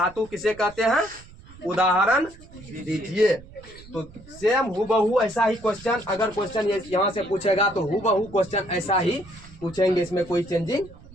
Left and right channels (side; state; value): right; noise; rumble, 21 dB below the sound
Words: किसे कहते हैं, उदाहरण दीजिए। तो सेम हूबहू ऐसा ही क्वेश्चन, अगर क्वेश्चन यहाँ से पूछेगा तो हूबहू क्वेश्चन ऐसा ही पूछेंगे, इसमें कोई चेंजिंग